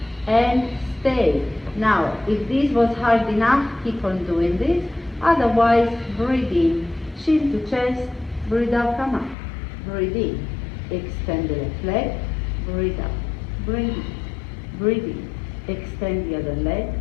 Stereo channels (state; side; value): drops out; right; at 9.3 s